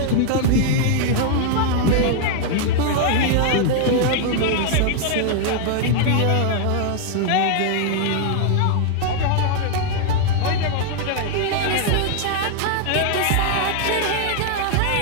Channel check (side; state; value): both; different; correlation 0.00